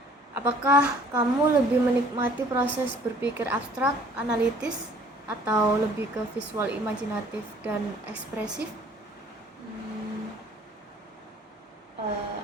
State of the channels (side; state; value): both; normal; correlation 0.54